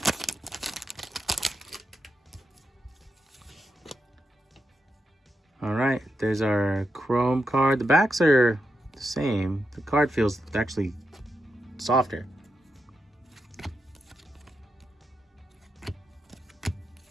All right, there's our Chrome card. The backs are the same. The card feels actually softer.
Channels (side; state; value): both; normal; correlation 0.86